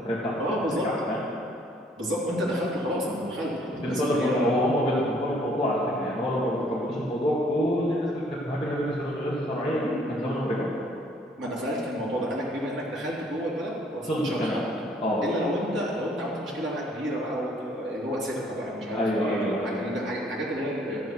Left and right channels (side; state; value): both; normal; correlation 0.62